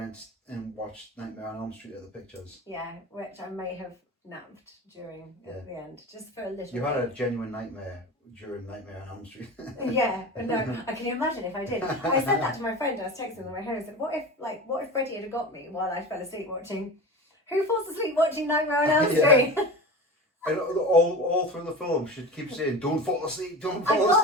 and watched Nightmare on Elm Street at the pictures. Yeah, which I may have napped during at the end, just for a little. You had a genuine nightmare during Nightmare on Elm Street. Yeah, but no, I can imagine if I did. I said that to my friend. I was texting on the way home. I said, "What if Freddie had got me while I fell asleep watching? Who falls asleep watching Nightmare on Elm Street?" And all through the film, she keeps saying, "Don't fall asleep, don't fall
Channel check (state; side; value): normal; both; correlation 0.30